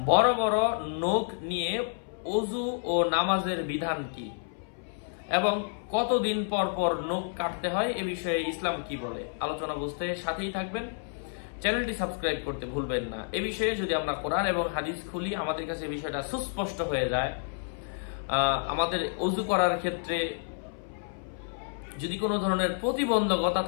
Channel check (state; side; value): silent; right; 58 dB below the other